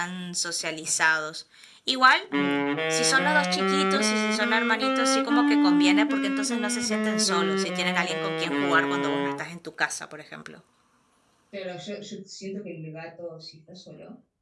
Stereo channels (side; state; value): both; identical; correlation 1.00